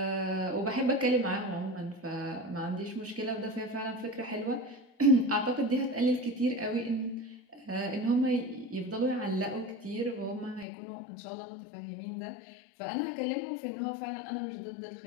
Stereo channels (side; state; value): right; drops out; at 10.7 s